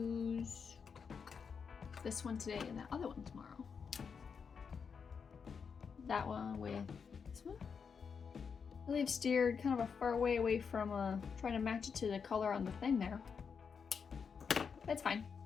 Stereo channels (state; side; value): quieter; right; 6.1 dB